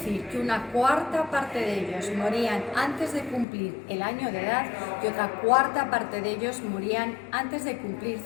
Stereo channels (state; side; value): drops out; right; at 3.5 s